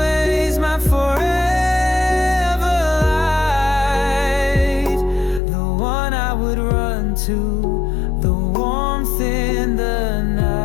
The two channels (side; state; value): right; drops out; at 5.4 s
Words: my forever light, the one I would run to, the warmth in the